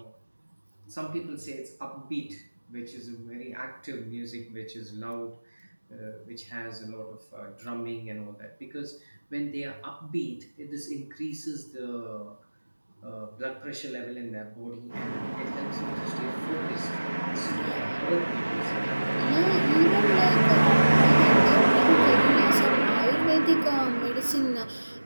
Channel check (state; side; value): inverted; both; correlation -1.00